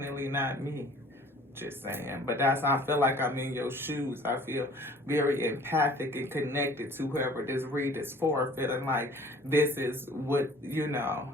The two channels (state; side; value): normal; both; correlation 0.51